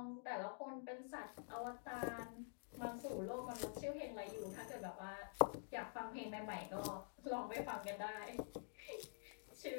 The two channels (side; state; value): right; silent; digital silence